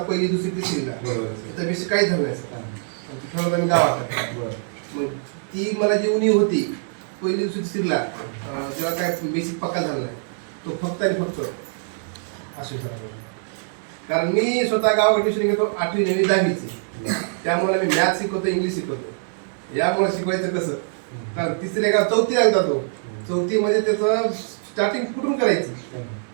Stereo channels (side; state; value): left; silent; 63 dB below the other